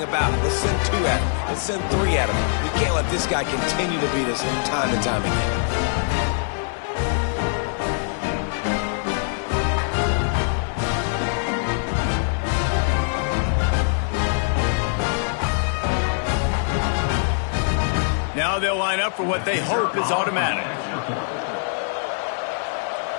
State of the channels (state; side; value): silent; right; 59 dB below the other